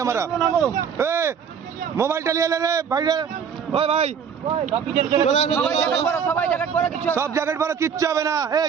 আমরা? মোবাইলটা নিয়ে এলে রে ভাই রে, ওই ভাই সব জ্যাকেট পরো, কিচ্ছু হবে না। এই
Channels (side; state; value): left; quieter; 7.2 dB